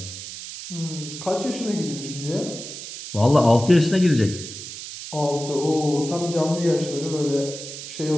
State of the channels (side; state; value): right; noise; hiss, 10 dB below the sound